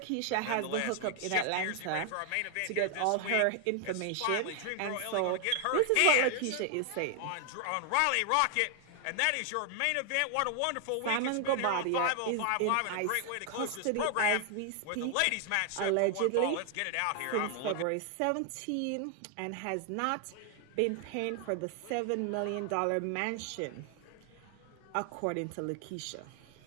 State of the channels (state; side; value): different; both; correlation 0.00